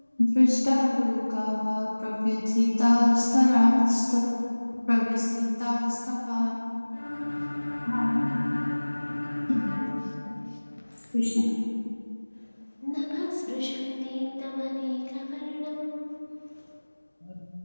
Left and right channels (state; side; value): inverted; both; correlation -1.00